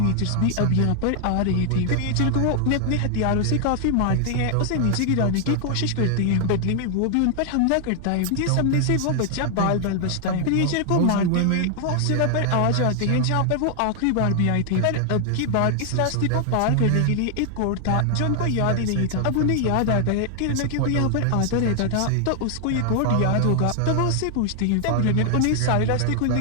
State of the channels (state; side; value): different; both; correlation 0.00